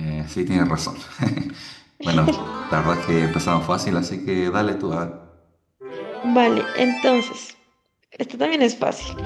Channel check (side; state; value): both; identical; correlation 1.00